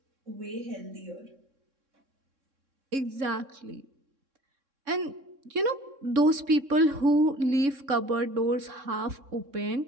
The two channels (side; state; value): left; late; 3.6 ms